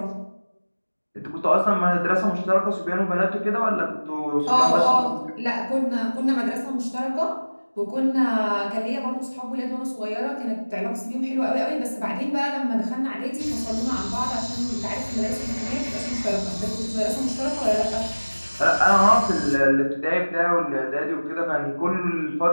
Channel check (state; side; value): inverted; both; correlation -1.00